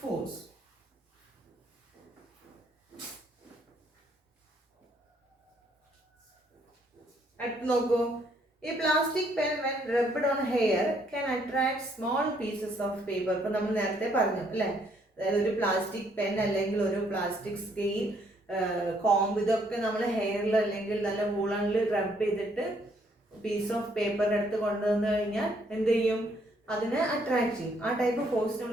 force. അടുത്ത് നോക്കൂ, ഈ plastic pen when rubbed on hair can attract small pieces of paper. ഇപ്പൊ നമ്മൾ നേരത്തെ പറഞ്ഞു അല്ലേ, അതായത് ഒരു പ്ലാസ്റ്റിക് പെൻ അല്ലെങ്കിൽ ഒരു പ്ലാസ്റ്റിക് സ്കെയിൽ, കോംബ്, ഇതൊക്കെ നമ്മൾ ഹെയറിൽ അല്ലെങ്കിൽ നല്ല വൂളണിൽ റബ്ബ് ചെയ്തിട്ട് പീസ് ഓഫ് പേപ്പറിൻ്റെ അടുത്ത് കൊണ്ടുവന്നു കഴിഞ്ഞാൽ എന്ത് ചെയ്യും? അതിനെ അട്രാക്ട് ചെയ്യും. ആ ടൈപ്പ് ഫോഴ്സ്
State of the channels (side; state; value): both; normal; correlation 0.68